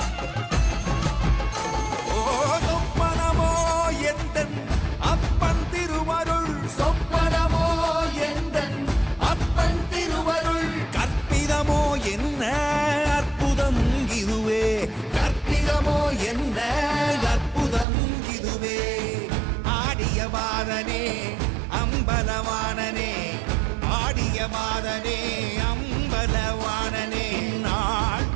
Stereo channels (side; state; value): left; drops out; at 17.9 s